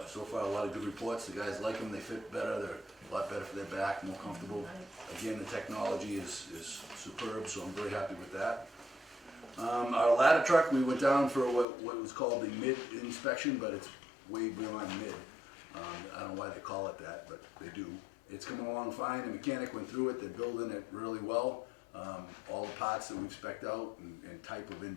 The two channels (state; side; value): drops out; right; at 11.7 s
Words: So far, a lot of good reports. The guys like them. They fit better. They're a lot better for their back, more comfortable. Again, the technology is superb, so I'm very happy with that. Our ladder truck, we went down for what was called the mid inspection, but it's way beyond mid. I don't know why they call it that, but they do. It's coming along fine. The mechanic went through it. They're building it really well. All the parts that we've spec'd out and type of